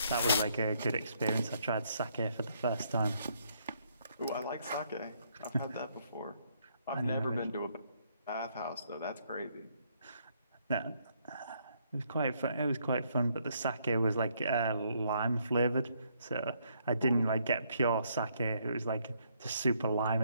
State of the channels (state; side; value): inverted; both; correlation -0.71